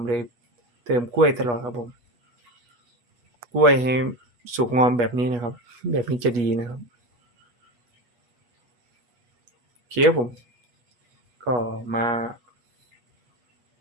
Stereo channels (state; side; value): late; left; 8.2 ms